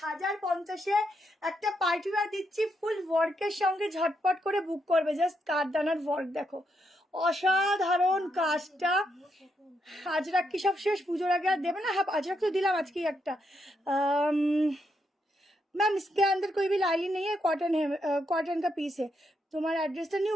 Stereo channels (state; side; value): normal; both; correlation 0.80